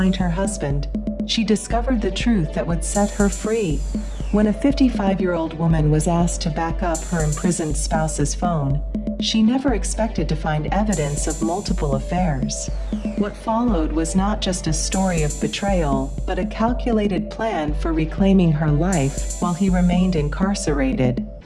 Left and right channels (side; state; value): both; identical; correlation 1.00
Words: her husband, she discovered the truth that would set her free. When a 55-year-old woman was asked to back up her imprisoned spouse's phone, she never expected to find evidence of multiple affairs. What followed was not just a story of betrayal, but a calculated plan for reclaiming her life while he remained incarcerated.